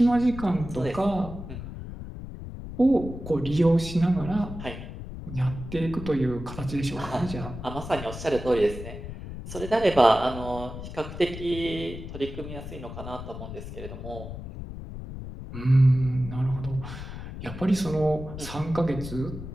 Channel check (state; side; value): noise; left; rumble, 10 dB below the sound